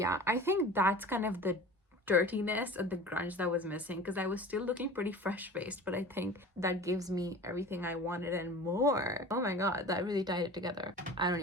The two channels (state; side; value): normal; both; correlation 0.39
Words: I think that's kind of the dirtiness and the grunge that was missing, because I was still looking pretty fresh-faced, but I think that gives me everything I wanted and more. Oh my god, that really tied it together. I don't